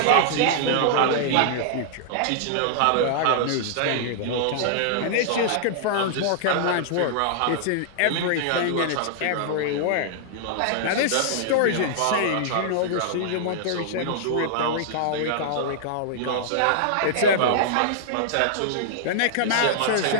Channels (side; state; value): both; different; correlation -0.01